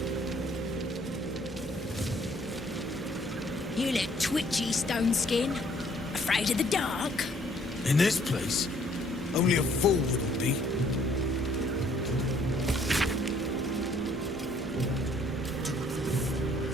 You look twitchy, Stone Skin. Afraid of the dark? In this place, only a fool wouldn't be.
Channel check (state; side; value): normal; both; correlation 0.62